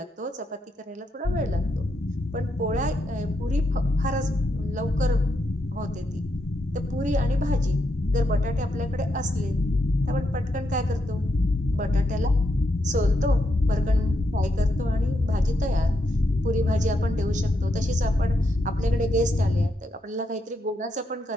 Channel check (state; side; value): normal; both; correlation 0.81